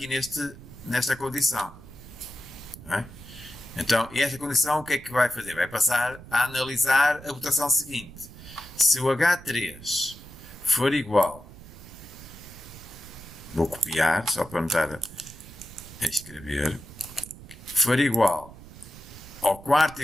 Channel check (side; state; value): right; noise; rumble, 17 dB below the sound